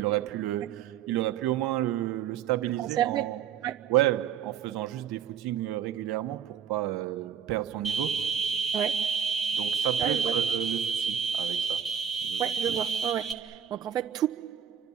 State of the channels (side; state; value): left; quieter; 8.6 dB